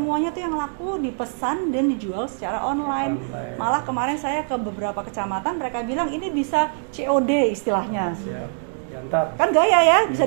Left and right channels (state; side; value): silent; left; digital silence